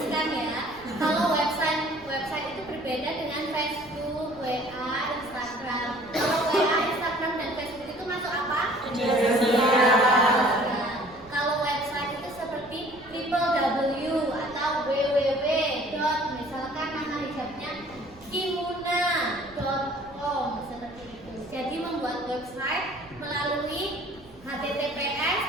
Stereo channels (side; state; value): right; noise; rumble, 24 dB below the sound